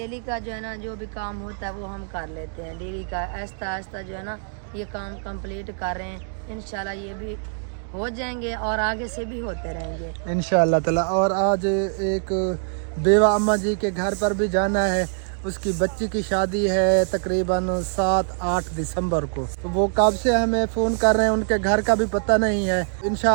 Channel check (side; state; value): left; silent; digital silence